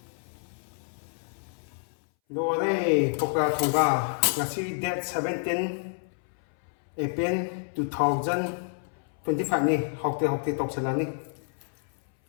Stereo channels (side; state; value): right; silent; 59 dB below the other